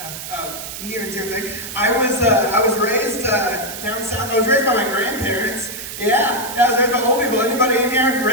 near and dear thing. I was raised down south. I was raised by my grandparents. Yeah, I was raised by old people. Anybody in here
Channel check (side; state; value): right; noise; hiss, 9 dB below the sound